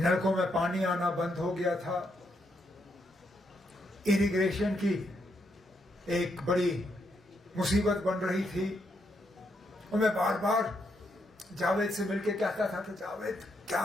में पानी आना बंद हो गया था, इरिगेशन की एक बड़ी मुसीबत बन रही थी। और मैं बार बार जावेद से मिलके कहता था कि जावेद क्या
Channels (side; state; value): both; normal; correlation 0.78